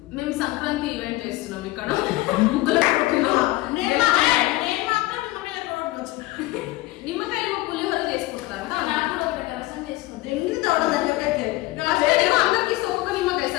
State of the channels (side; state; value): right; quieter; 18.7 dB